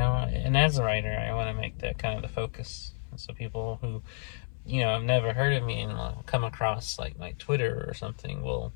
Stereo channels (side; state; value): right; silent; 57 dB below the other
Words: as a writer, I want to make that kind of the focus. So people who, have never heard of me and will come across my Twitter or something will